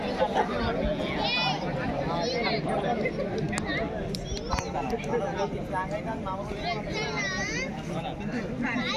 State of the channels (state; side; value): identical; both; correlation 1.00